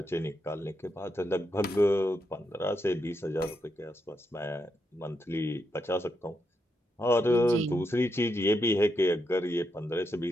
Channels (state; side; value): normal; both; correlation 0.82